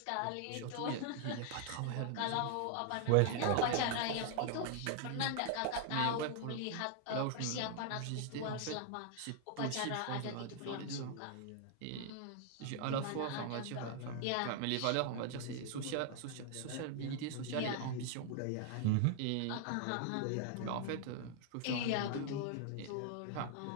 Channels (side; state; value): both; different; correlation 0.00